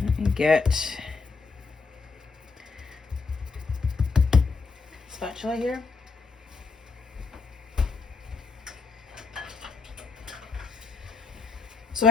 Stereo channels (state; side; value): quieter; right; 4.5 dB